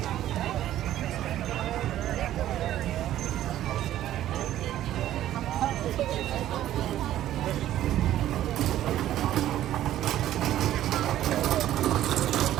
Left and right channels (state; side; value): quieter; left; 12.8 dB